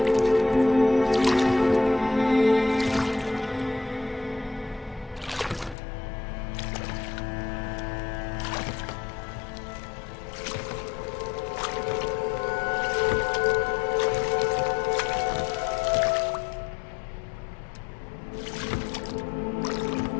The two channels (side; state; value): right; drops out; at 5.8 s